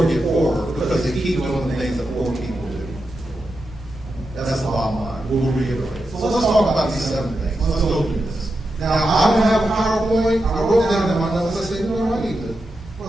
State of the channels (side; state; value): both; normal; correlation 0.88